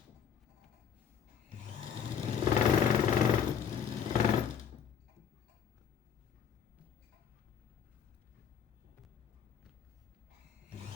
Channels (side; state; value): right; quieter; 7.8 dB